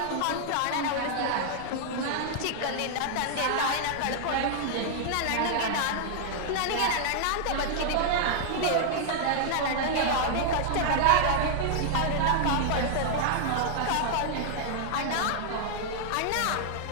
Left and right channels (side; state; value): both; different; correlation -0.01